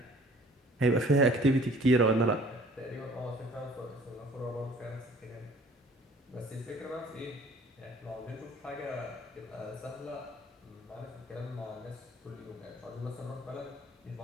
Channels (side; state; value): both; normal; correlation 0.52